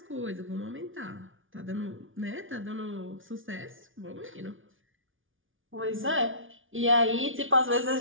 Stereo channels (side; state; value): left; late; 0.57 ms